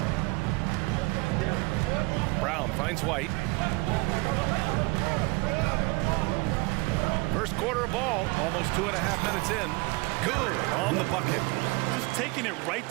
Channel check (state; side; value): quieter; left; 26.3 dB